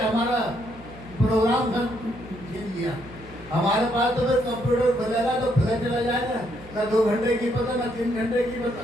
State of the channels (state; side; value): noise; left; hum, 20 dB below the sound